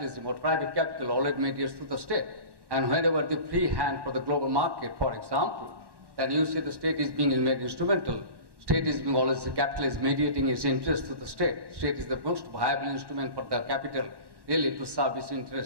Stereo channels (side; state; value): left; late; 1.1 ms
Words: or private capital always mediates through the state. And whenever the free hand for the global market, for example, then you see the state is being made instrumental. State is being always, the capital is mediating its interest to the state. State is the most viable instrument for the capital really to serve its